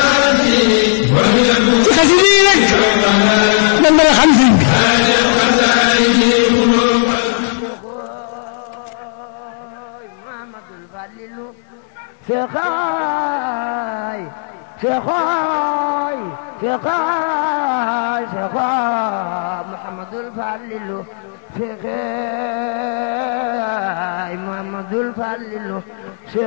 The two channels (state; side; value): silent; right; digital silence